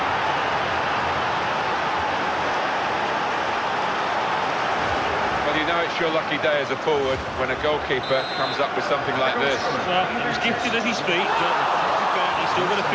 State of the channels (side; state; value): both; identical; correlation 1.00